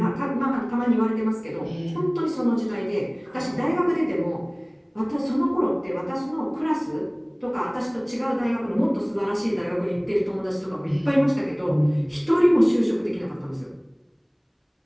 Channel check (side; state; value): both; identical; correlation 1.00